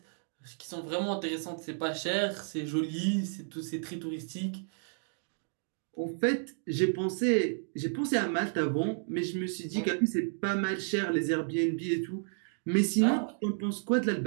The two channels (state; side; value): silent; left; digital silence